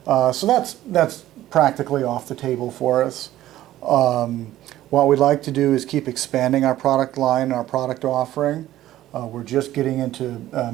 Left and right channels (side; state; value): left; quieter; 14.2 dB